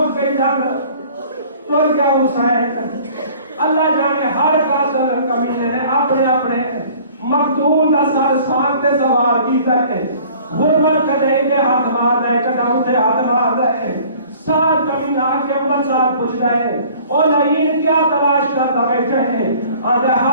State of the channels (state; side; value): inverted; both; correlation -0.51